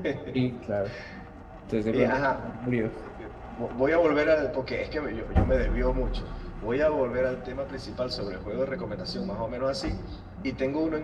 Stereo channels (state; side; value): identical; both; correlation 1.00